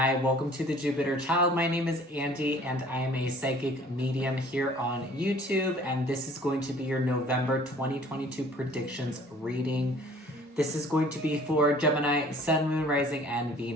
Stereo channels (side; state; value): both; normal; correlation 0.52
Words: welcome to the Jupiter Child. My name is Andy and I am a psychic medium here on YouTube, and this is going to be your November 2022 predictions reading. This is going to be for Gemini, Sun, Moon, Rising, and